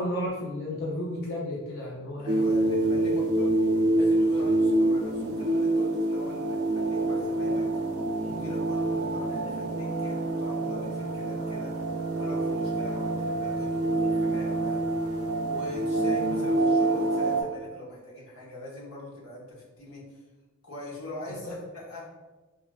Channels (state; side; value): normal; both; correlation 0.55